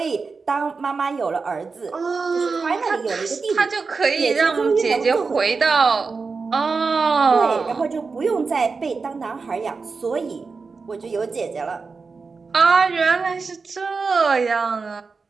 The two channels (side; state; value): left; quieter; 4.6 dB